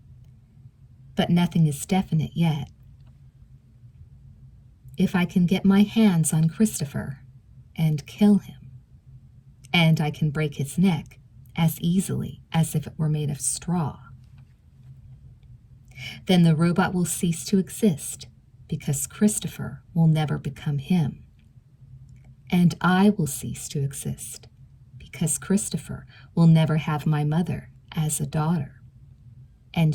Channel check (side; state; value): both; identical; correlation 1.00